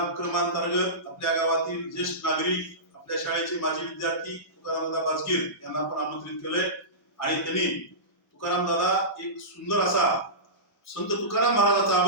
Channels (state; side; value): normal; both; correlation -0.20